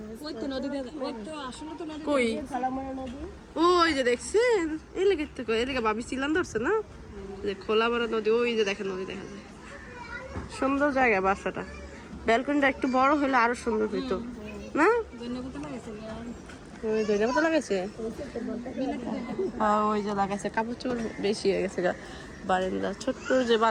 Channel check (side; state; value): both; identical; correlation 1.00